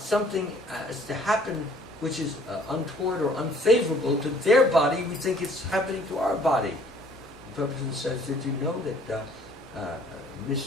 is to happen which is untoward or unfavorable to their body, we think it's happening to our body. The person says, did you know that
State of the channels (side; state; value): both; normal; correlation 0.57